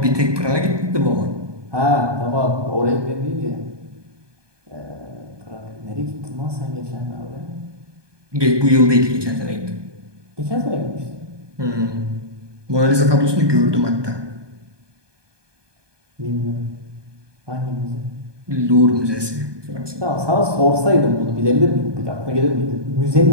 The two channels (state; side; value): late; left; 1.2 ms